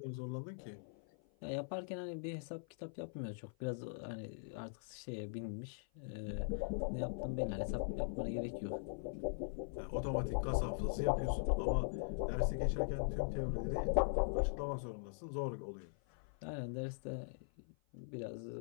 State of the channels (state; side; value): silent; right; 50 dB below the other